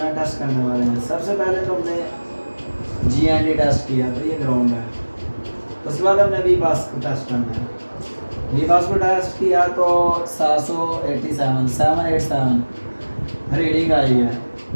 टेस्ट करने वाले हैं। सबसे पहले तो हमने GND टेस्ट किया, तो ये ग्राउंड है। उसके बाद हमने भी पास को टेस्ट करना है। वीमास को टेस्ट किया तो 787 रीडिंग आई है।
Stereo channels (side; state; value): both; inverted; correlation -1.00